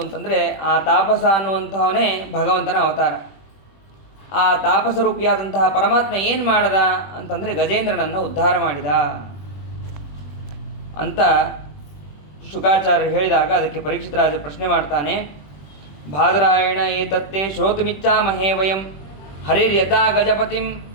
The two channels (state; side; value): late; right; 21 ms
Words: ಅಂತಂದರೆ, ಆ ತಾಪಸ ಅನ್ನುವಂಥವನೇ ಭಗವಂತನ ಅವತಾರ. ಆ ತಾಪಸರೂಪಿಯಾದಂತಹ ಪರಮಾತ್ಮ ಏನು ಮಾಡದ ಅಂತಂದರೆ ಗಜೇಂದ್ರನನ್ನು ಉದ್ಧಾರ ಮಾಡಿದ ಅಂತ ಶುಕಾಚಾರ್ಯರು ಹೇಳಿದಾಗ ಅದಕ್ಕೆ ಪರೀಕ್ಷಿತ ರಾಜ ಪ್ರಶ್ನೆ ಮಾಡ್ತಾನೆ. ಬಾದರಾಯಣ ಏತತ್ತೇ ಶ್ರೋತುಮಿಚ್ಛಾಮಹೇ ವಯಂ ಹರಿರ್ಯಥಾ ಗಜಪತಿಂ